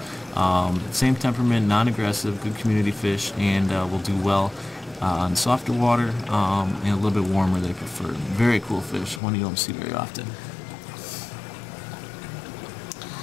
Same temperament, non-aggressive, good community fish, and will do well on softer water and a little bit warmer they prefer. Very cool fish, one you don't see very often.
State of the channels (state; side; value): drops out; right; at 9.2 s